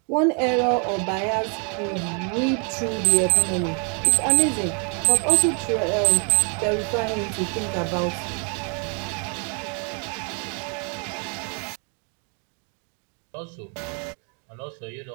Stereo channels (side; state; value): left; quieter; 38.9 dB